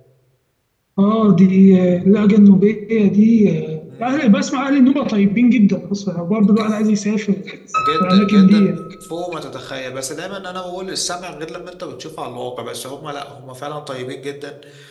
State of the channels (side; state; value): both; identical; correlation 1.00